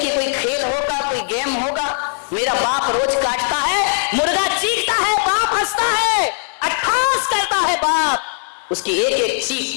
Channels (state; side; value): silent; right; digital silence